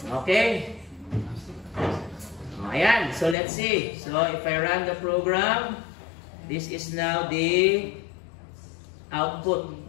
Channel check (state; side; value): drops out; right; at 3.4 s